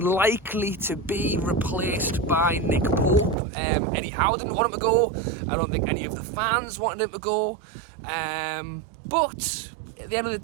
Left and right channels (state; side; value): drops out; left; at 3.4 s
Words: likely to be replaced by Nick Pope. Eddie Howe didn't want him to go. I don't think any of the fans wanted him to go. But at the end of the